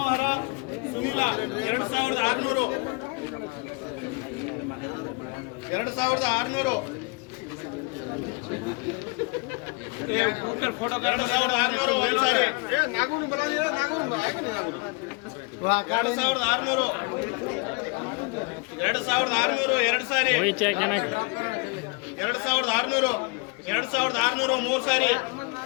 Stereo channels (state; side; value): quieter; right; 30.8 dB